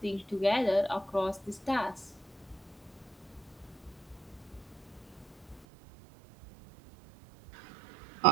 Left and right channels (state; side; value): drops out; left; at 5.7 s